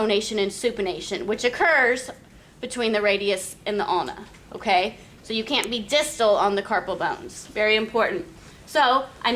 and supination, which occurs between the radius and the ulna, okay? So you can't be distal on the carpal bones. Very important. So I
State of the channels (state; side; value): identical; both; correlation 1.00